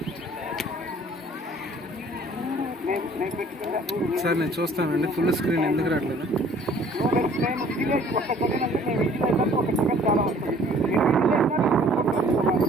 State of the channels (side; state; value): both; normal; correlation 0.54